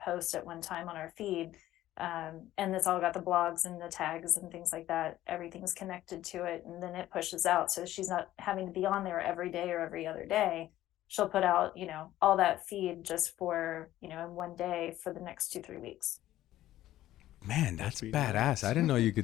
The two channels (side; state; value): right; quieter; 14.2 dB